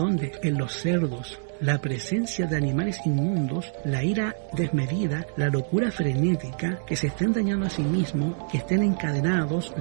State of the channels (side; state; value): left; silent; digital silence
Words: En los cerdos. La presencia de animales inmundos, la ira desmedida, la locura frenética, que se estén dañando a sí mismos, que estén encadenados,